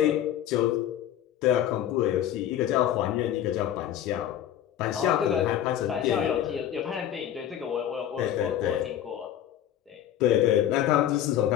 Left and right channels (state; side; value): quieter; right; 11.1 dB